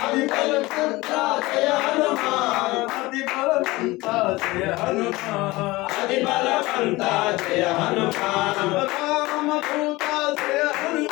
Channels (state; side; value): quieter; right; 20.7 dB